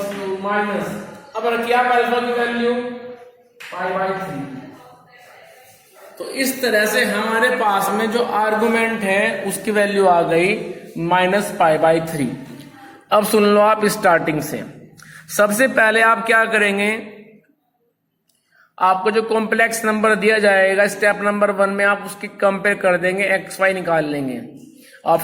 to minus, अब रखिए आप अल्फा की वैल्यू पाई बाय 3। तो इस तरह से हमारे पास में जो आर्गुमेंट है उसकी वैल्यू आ गई माइनस पाई बाय 3। अब सुन लो आप स्टार्टिंग से। सबसे पहले आप क्या करेंगे, आपको जो कॉम्प्लेक्स नंबर दिया जाएगा स्टेप नंबर 1 में आप उसकी कंपेयर कर देंगे, एक्स वाई निकाल लेंगे।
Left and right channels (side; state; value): both; identical; correlation 1.00